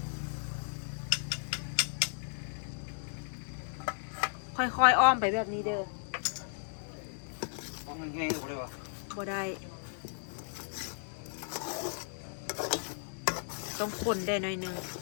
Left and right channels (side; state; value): right; silent; digital silence